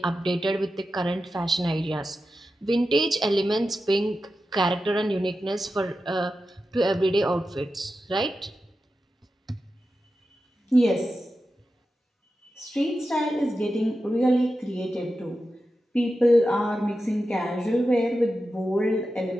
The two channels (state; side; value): normal; both; correlation 0.91